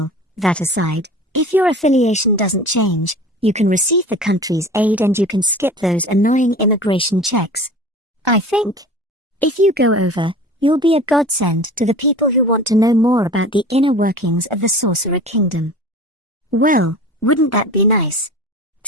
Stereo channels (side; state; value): both; normal; correlation 0.38